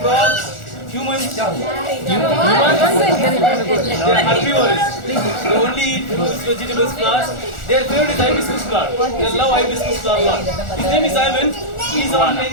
humans. They are herbivorous. They only eat fruits, vegetables, flowers. Their favorite is hibiscus flower. They love hibiscus flower a lot. His name is Ivan. He is around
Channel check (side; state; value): right; late; 1.4 ms